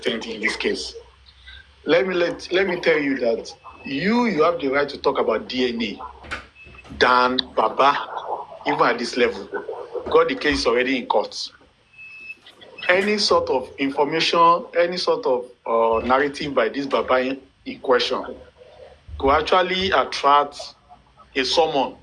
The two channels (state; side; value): identical; both; correlation 1.00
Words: in this case. Let me tell you that you have the right to talk about DNA than Baba, even at this level. Got the case already in court. Any sort of information, any sort of narrative by this Baba in question could actually attract a summon.